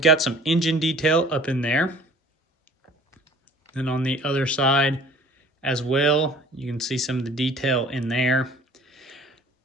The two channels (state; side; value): normal; both; correlation 0.49